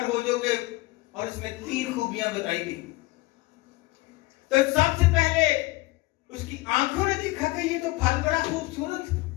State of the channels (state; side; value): quieter; right; 20.8 dB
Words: हो जाओगे, और इसमें 3 खूबियां बताई गई। तो सबसे पहले उसकी आंखों ने देखा कि ये तो फल बड़ा खूबसूरत,